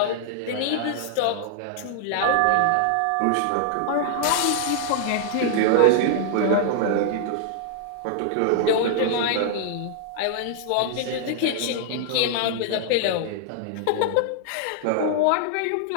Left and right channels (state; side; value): different; both; correlation -0.01